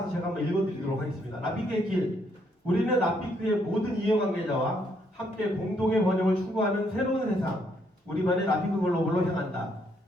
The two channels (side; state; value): both; normal; correlation 0.72